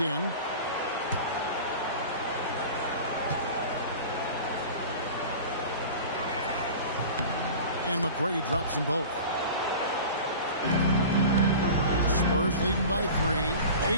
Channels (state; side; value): inverted; both; correlation -0.37